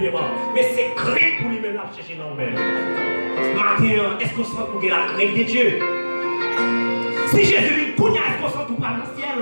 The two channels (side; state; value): both; inverted; correlation -1.00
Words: rang. Mais c'est crainte pour lui-même la chercher dans le même. Maintenant, est-ce qu'on se rend compte de la crainte de Dieu? Si Jésus vient cogner, est-ce qu'on se rend compte dans le ciel?